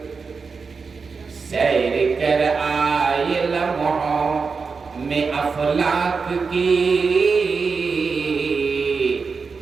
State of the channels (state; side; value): quieter; left; 4.9 dB